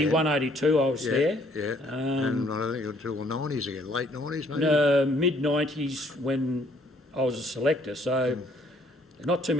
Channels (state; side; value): normal; both; correlation 0.64